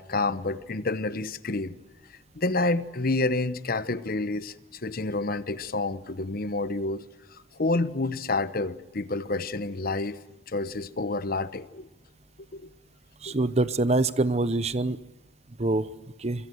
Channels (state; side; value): normal; both; correlation 0.31